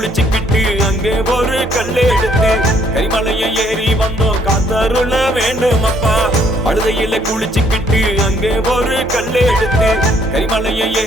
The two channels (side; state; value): both; normal; correlation 0.66